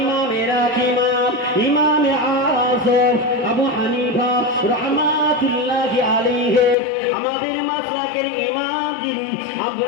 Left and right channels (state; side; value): drops out; right; at 6.8 s